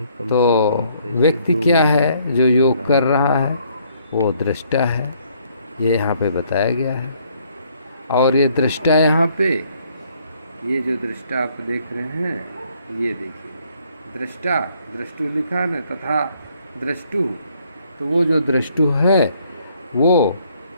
तो व्यक्ति क्या है जो योग कर रहा है? वो दृष्टा है। ये यहाँ पे बताया गया है। और ये दृष्टा यहाँ पे, ये जो दृष्टा आप देख रहे हैं, ये देखिए दृष्टा, दृष्टु लिखा न, तथा दृष्टु। तो वो जो दृष्टु है वो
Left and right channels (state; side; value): inverted; both; correlation -0.66